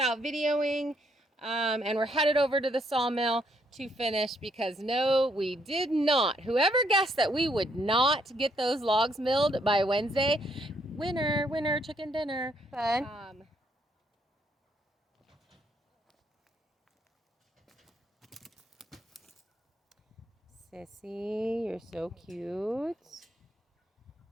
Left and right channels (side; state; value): both; normal; correlation 0.72